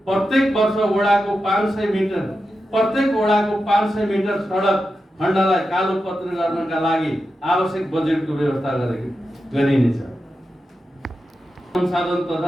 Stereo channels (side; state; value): both; normal; correlation 0.90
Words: प्रत्येक वडाको 500 मिटर सडक खण्डलाई कालोपत्री गर्नका लागि आवश्यक बजेटको व्यवस्था गरिनेछ। संसाधन